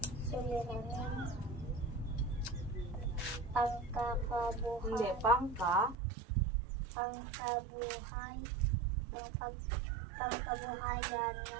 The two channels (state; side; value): drops out; left; at 6.0 s